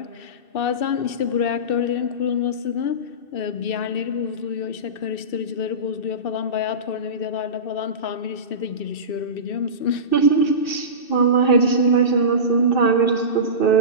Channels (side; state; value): right; late; 2.6 ms